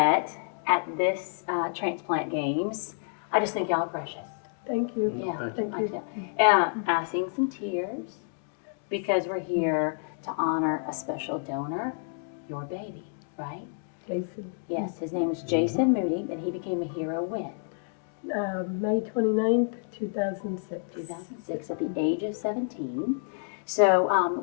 at this Transplant Games. I just think y'all are precious. Thank you. Yeah, Thank you. I'm seeing some tears because we're here to honor a special donor, your baby, right? Jason. Yes, his name is Jason Moody, and he became a hero when? May 29th, 2006. 2006, at the age of 17. So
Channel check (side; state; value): right; silent; digital silence